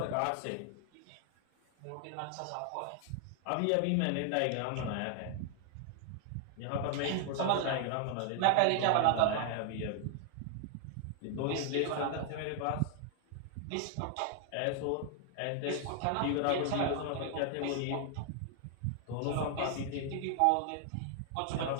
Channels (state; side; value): different; both; correlation 0.00